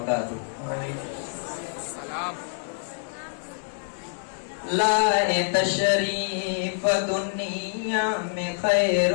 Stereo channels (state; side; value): silent; right; digital silence